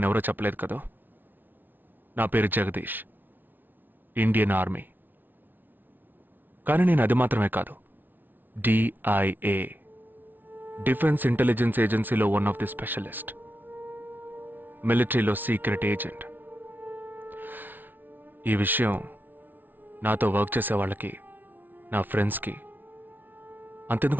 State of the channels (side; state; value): left; late; 0.088 ms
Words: చెప్పలేదు కదా. నా పేరు జగదీష్, ఇండియన్ ఆర్మీ. కానీ నేను అది మాత్రమే కాదు, DIA, డిఫెన్స్ ఇంటెలిజెన్స్ ఏజెన్సీలో వన్ ఆఫ్ ది స్పెషలిస్ట్, మిలిటరీలో సీక్రెట్ ఏజెంట్. ఈ విషయం నాతో వర్క్ చేసే వాళ్ళకి, నా ఫ్రెండ్స్కి,